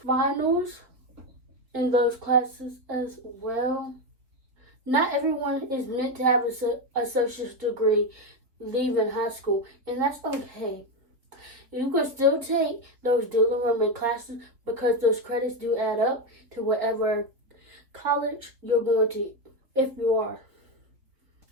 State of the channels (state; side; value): late; left; 3.7 ms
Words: in those classes as well. Not everyone is meant to have an associate's degree leaving high school, and that's okay. You can still take those dual enrollment classes because those credits do add up to whatever college you're going to, if you are.